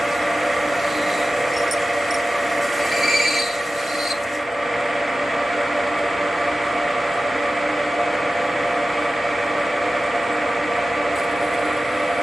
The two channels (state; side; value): normal; both; correlation 0.94